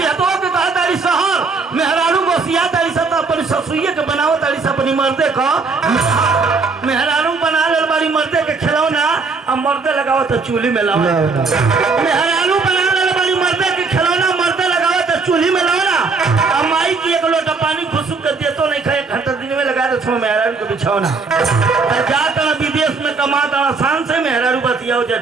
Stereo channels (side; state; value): left; quieter; 4.4 dB